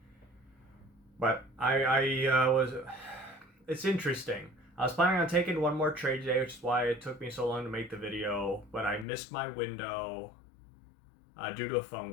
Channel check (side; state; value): right; drops out; at 9.1 s